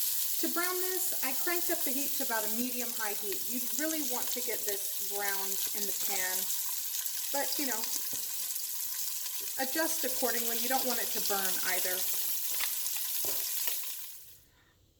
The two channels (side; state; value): both; identical; correlation 1.00